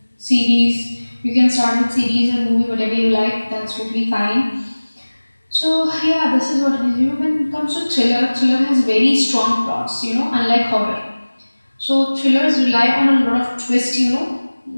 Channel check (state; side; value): inverted; both; correlation -1.00